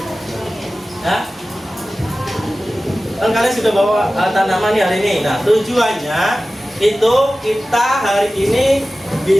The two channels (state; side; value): normal; both; correlation 0.96